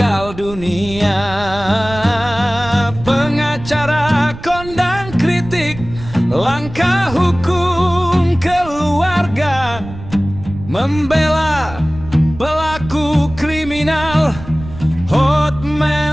dunia. Pengacara kondang kritik langkah hukum keluarga, membela pelaku kriminal.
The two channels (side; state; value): right; noise; rumble, 13 dB below the sound